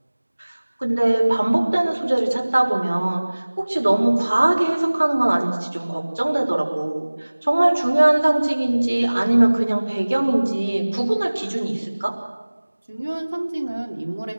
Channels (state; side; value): inverted; both; correlation -1.00